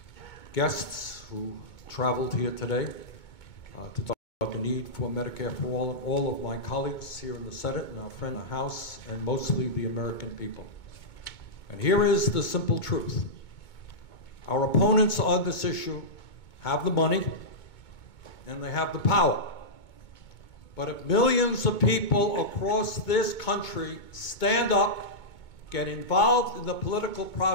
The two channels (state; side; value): late; right; 2.2 ms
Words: guests who traveled here today to talk about the need for Medicare for all, and all of my colleagues here in the Senate and our friend in the House, and mostly the American people. And here is the simple truth. Our opponents on this issue have the money and they have the power. But if millions of people across this country stand up, get involved in the political